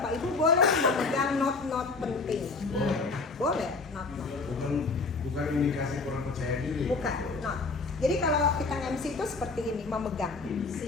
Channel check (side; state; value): right; quieter; 4.0 dB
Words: Ibu boleh memegang not-not penting. Boleh, not-not. Bukan indikasi kurang percaya diri. Bukan, not. Jadi kalau kita MC itu seperti ini, memegang.